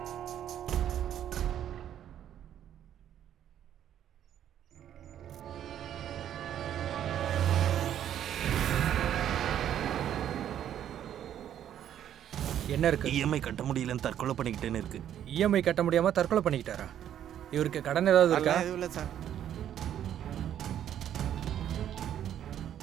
என்ன இருக்கு? இஎம்ஐ கட்ட முடியலன்னு தற்கொலை பண்ணிக்கிட்டேன்னு இருக்கு. இஎம்ஐ கட்ட முடியாம தற்கொலை பண்ணிக்கிட்டாரா? இவருக்கு கடன் ஏதாவது இருக்கா? இல்லை சார்.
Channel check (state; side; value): quieter; left; 10.4 dB